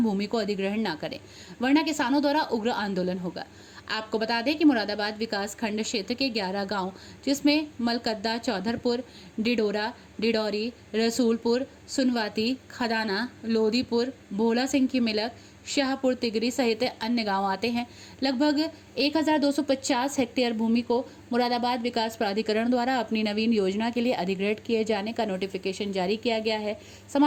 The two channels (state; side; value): identical; both; correlation 1.00